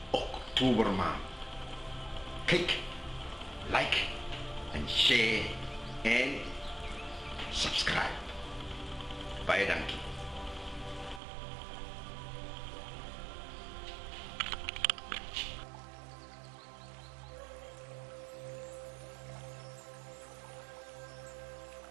Oktobermaand. Kijk, like en share en subscribe. Baie dankie.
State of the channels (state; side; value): drops out; left; at 11.2 s